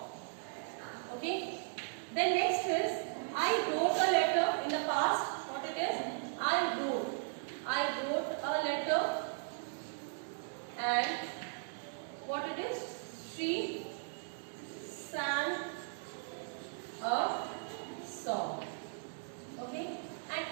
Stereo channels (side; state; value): left; silent; digital silence